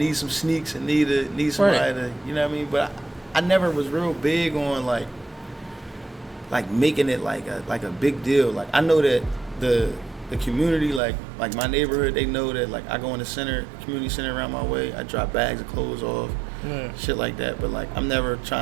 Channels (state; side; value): drops out; left; at 11.0 s